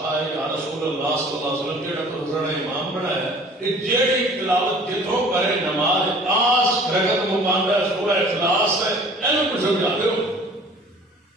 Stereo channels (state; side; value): normal; both; correlation 0.49